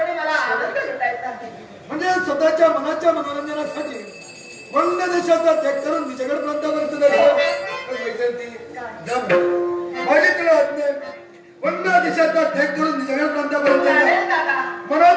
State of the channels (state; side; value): identical; both; correlation 1.00